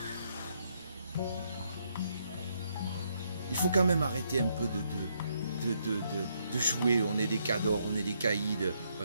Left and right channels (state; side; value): inverted; both; correlation -0.75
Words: Il faut quand même arrêter un peu de jouer, on est des cadors, on est des caïds,